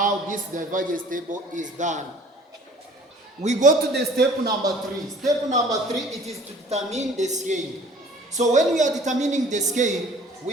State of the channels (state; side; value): normal; both; correlation 0.50